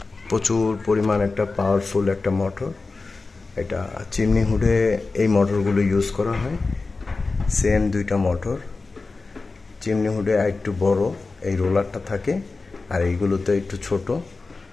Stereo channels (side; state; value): right; quieter; 3.8 dB